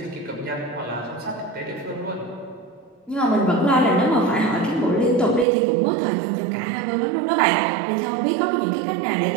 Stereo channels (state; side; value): drops out; left; at 5.5 s